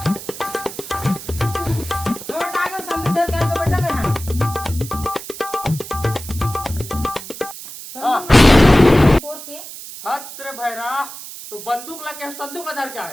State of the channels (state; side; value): noise; right; hiss, 12 dB below the sound